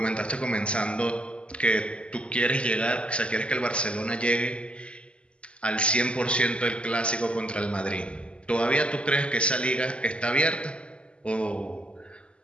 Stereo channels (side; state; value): right; late; 0.056 ms